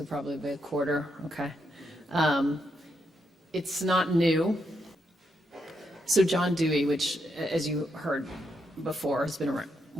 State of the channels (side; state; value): both; normal; correlation 0.80